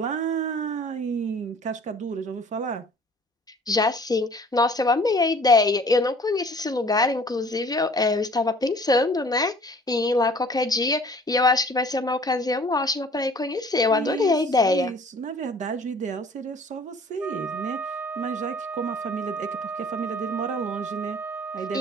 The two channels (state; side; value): normal; both; correlation 0.52